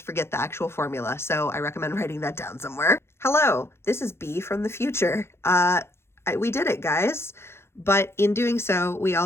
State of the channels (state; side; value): late; right; 0.12 ms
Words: forget the actual formula. So I recommend writing that down somewhere. Hello, this is B from the future. We did it, guys. But in doing so, we